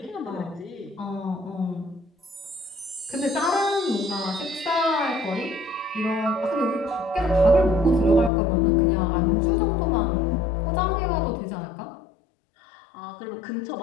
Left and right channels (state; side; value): drops out; right; at 8.3 s